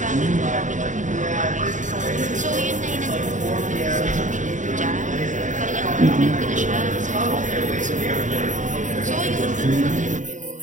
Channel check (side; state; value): left; late; 0.36 ms